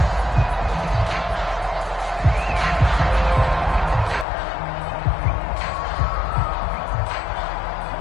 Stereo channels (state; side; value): drops out; right; at 4.2 s